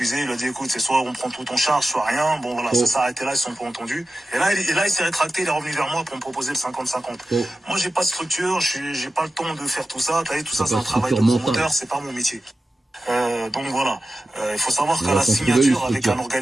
Il a dit, écoute, c'est soit on prend tout en charge, soit rien. Bon, voilà, ça s'est arrêté là, ils se sont pas entendus. Et là, il s'est rétracté, il est revenu vers moi pour me proposer le 50-50. Moi, j'ai pas de structure, j'ai pas le temps de faire tout ça. T'as vu, tout ça, c'est un travail de promoteur, c'est pas mon métier. Donc voilà, il faut savoir qu'à la signature avec un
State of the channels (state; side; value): normal; both; correlation 0.94